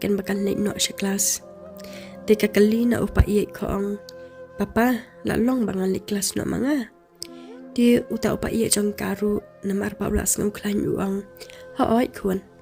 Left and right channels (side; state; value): both; identical; correlation 1.00